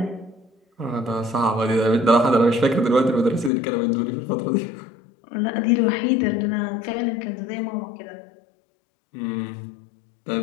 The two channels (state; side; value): drops out; right; at 3.5 s